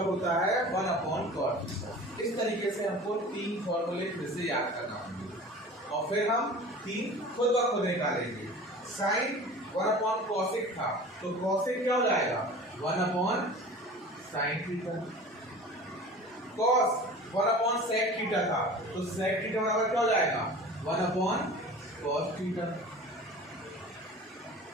होता है 1 अपॉन कॉट थीटा। इस तरीके से हमको 3 फॉर्मूले फिर से याद करना होंगे और फिर हम 3 खुद ब खुद निकालेंगे। साइन 1/cosec था, तो cosec क्या हो जाएगा 1/sin theta. cos 1/sec theta था, तो sec थीटा बराबर क्या हो जाएगा 1/cos थीटा।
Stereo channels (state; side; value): normal; both; correlation 0.40